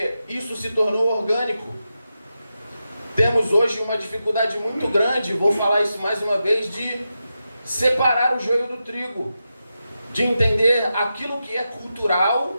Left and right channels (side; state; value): both; inverted; correlation -0.89